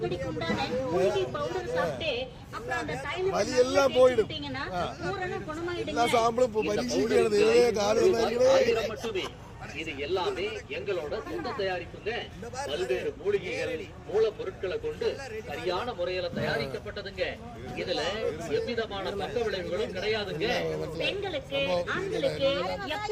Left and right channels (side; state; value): both; identical; correlation 1.00